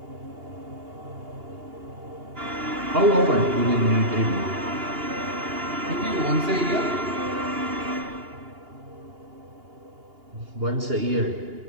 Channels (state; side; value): late; left; 2.8 ms